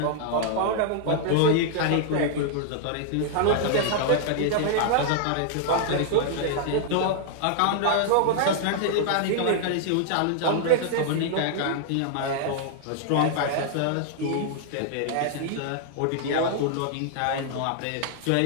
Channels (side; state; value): both; different; correlation -0.01